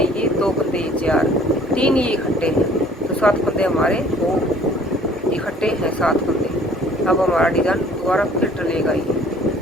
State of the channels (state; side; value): normal; both; correlation 0.54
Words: ये, दो फंदे ये, 4, 3 ये इकट्ठे हैं, तो 7 फंदे हमारे वो इकट्ठे हैं 7 फंदे। अब हमारा डिज़ाइन दोबारा फिर डलेगा ये।